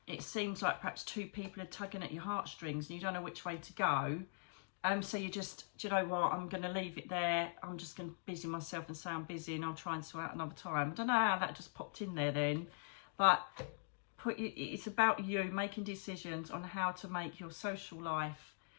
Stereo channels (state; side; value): silent; right; digital silence